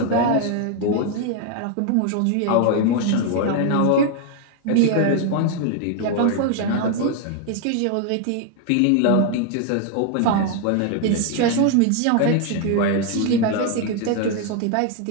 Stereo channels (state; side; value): different; both; correlation 0.01